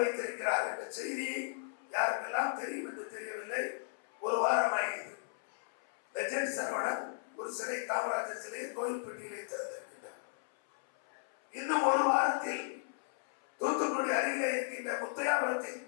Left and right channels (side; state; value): right; silent; 54 dB below the other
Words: என்ற செய்தி யாருக்கெல்லாம் தெரியும் என்று தெரியவில்லை. ஒரு வாரம் ஆகிறது. லெஜண்ட் சரவணன் ஒரு சிலை, காமராஜர் சிலையை கோயில்பட்டியிலே திறந்திருக்கின்றார். இன்னும் ஒரு வாரத்தில் தூத்துக்குடி அருகிலே இருக்கின்ற முத்தையாபுரத்தில்